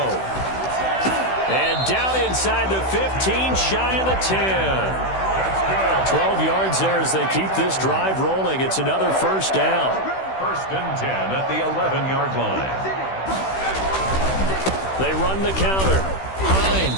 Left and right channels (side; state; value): right; late; 16 ms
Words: And down inside the 15, shy of the 10. 12 yards there as they keep this drive rolling. It's another 1st down. 1st and 10 at the 11-yard line. They run the counter.